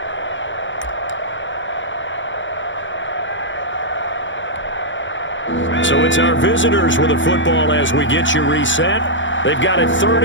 So it's our visitors with a football as we get you reset. They've got a 3rd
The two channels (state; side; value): late; right; 0.55 ms